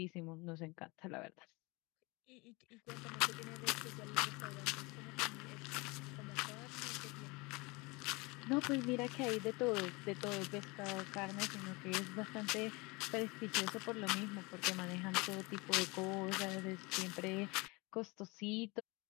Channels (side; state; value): right; quieter; 25.9 dB